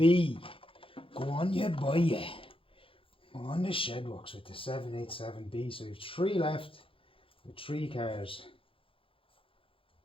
Go on, you buy it. On the Shedworks with the 787B. So you have 3 left with 3 cars.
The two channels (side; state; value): right; late; 0.26 ms